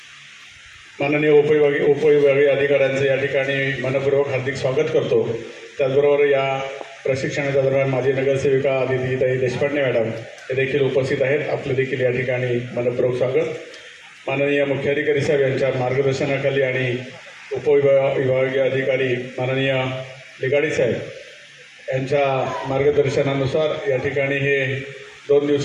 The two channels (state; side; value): identical; both; correlation 1.00